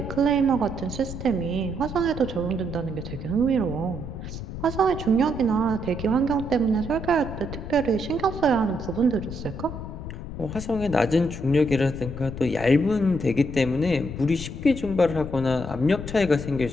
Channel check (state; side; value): noise; left; rumble, 9 dB below the sound